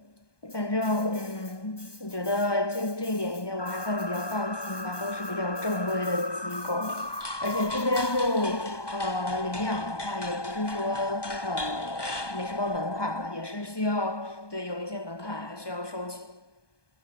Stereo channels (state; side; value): late; right; 1.2 ms